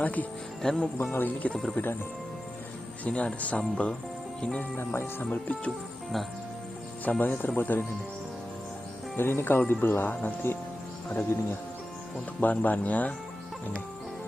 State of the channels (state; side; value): normal; both; correlation 0.93